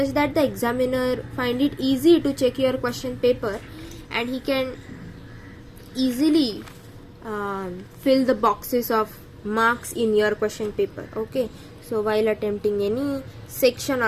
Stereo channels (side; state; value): both; identical; correlation 1.00